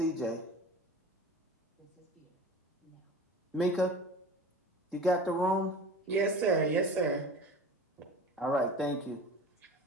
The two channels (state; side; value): normal; both; correlation 0.37